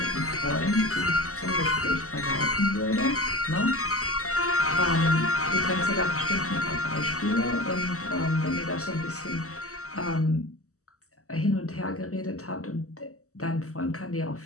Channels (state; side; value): late; right; 0.65 ms